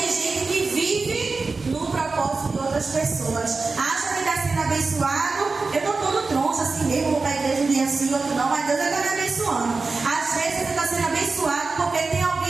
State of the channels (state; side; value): quieter; left; 4.0 dB